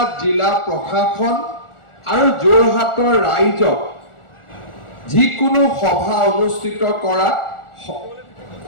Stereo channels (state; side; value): late; right; 1.4 ms